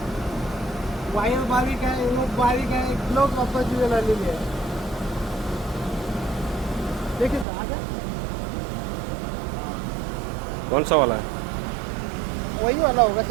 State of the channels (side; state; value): left; drops out; at 7.5 s